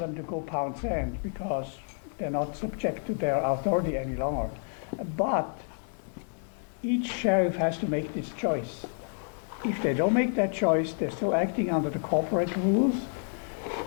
to go pound sand because they're not subject to their authority any longer. But each sheriff has to make this choice. if they don't make that choice, they're still acting under the corporate rules,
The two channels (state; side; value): silent; right; 58 dB below the other